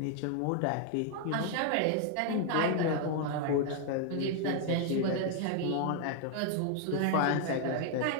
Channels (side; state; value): both; different; correlation 0.00